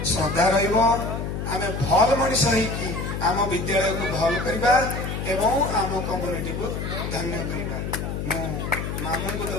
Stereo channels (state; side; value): noise; left; hum, 4 dB below the sound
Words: श्रद्धा रमें भल मनीष होगी आम विद्यालय को भल करवा एवं आम कम्युनिटी को धन्य करवा मु मामू को